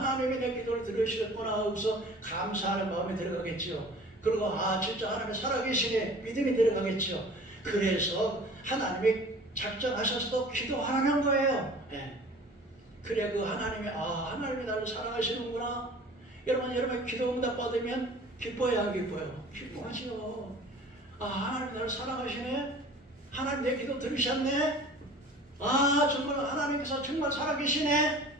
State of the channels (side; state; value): both; normal; correlation 0.45